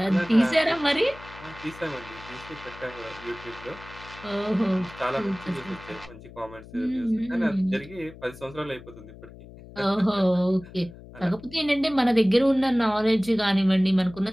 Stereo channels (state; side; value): noise; left; hum, 18 dB below the sound